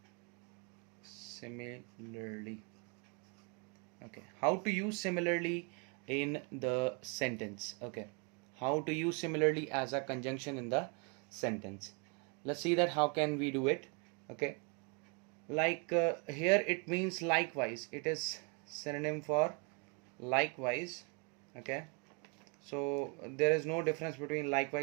similarly. Okay, how to use similarly in the sentence. Okay, how to use similarly as a conjunction in the sentence. Let's see that how can we do it. Okay, like here it means likewise. It is synonym for likewise. Okay, so there is no difference between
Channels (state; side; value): quieter; left; 33.6 dB